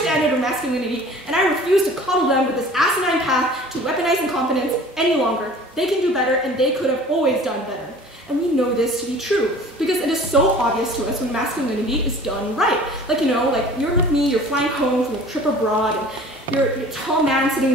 of masculinity, and I refuse to coddle them with this asinine path to weaponize incompetence any longer. They can do better, and they could have always done better. And we know this to be true, because it is so obvious to us when masculinity is done right. Like, you know, like you're with me, you're flying home from a trip abroad, and you're a tall man sitting in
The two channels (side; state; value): both; normal; correlation 0.46